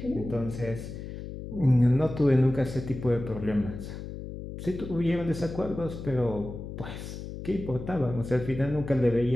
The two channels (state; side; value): noise; left; hum, 9 dB below the sound